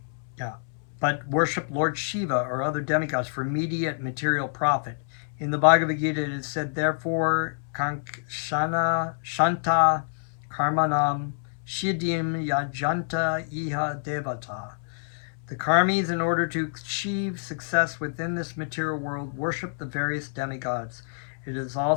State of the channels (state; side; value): silent; right; 60 dB below the other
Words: But worship Lord Siva or other demigods for immediate material profit. In the Bhagavad Gita, it is said, therefore, Kankshana Shanta Karmanam Shidim Yajanta Iha Devata. The karmis, in order to achieve success within this material world, worship the various demigods. It is